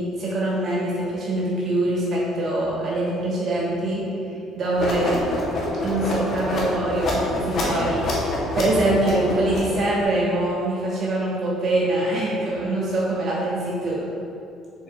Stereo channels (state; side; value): normal; both; correlation 0.61